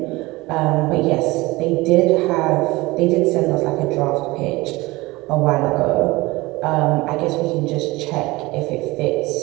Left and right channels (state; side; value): quieter; left; 21.2 dB